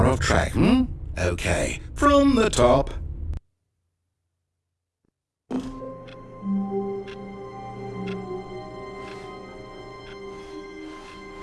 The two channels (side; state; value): both; identical; correlation 1.00